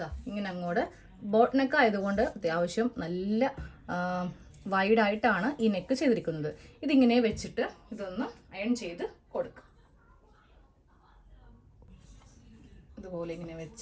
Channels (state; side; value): identical; both; correlation 1.00